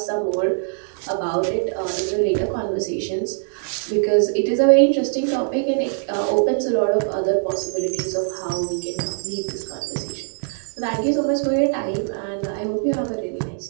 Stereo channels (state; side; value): silent; left; digital silence